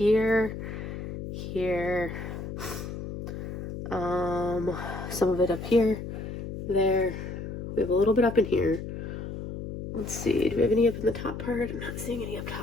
some of it up here, there. We have a little bit up in here. Let's see, do we have any up in the top part? I'm not seeing any up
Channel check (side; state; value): left; noise; hum, 7 dB below the sound